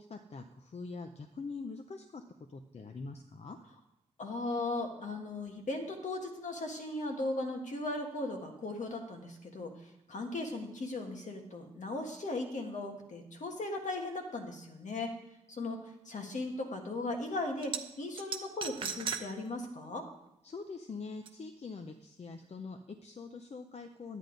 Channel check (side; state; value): both; normal; correlation 0.48